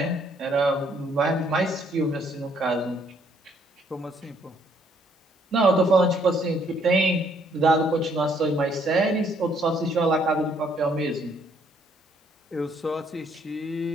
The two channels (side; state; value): both; normal; correlation 0.67